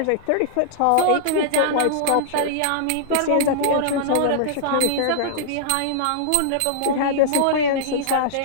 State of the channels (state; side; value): different; both; correlation -0.01